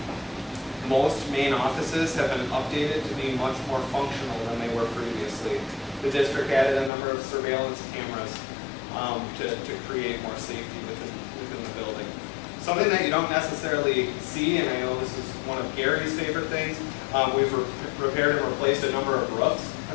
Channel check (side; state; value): right; drops out; at 6.9 s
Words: Most main offices have been updated to be much more functional than they were previously. The district added a number of surveillance cameras to create more safety within the building. Something that you don't necessarily see, and I know this is one of Gary's favorite things, we've repaired and replaced a number of roofs